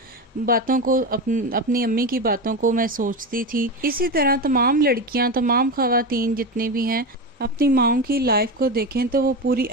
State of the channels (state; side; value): normal; both; correlation 0.19